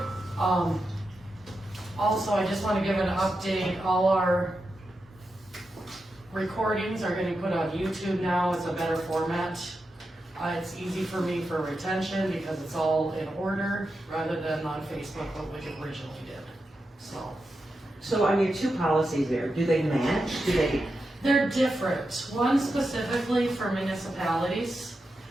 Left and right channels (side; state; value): both; normal; correlation 0.88